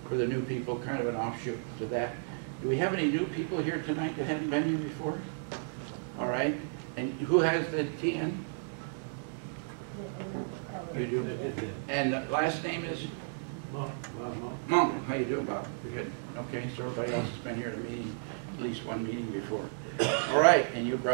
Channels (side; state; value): left; silent; digital silence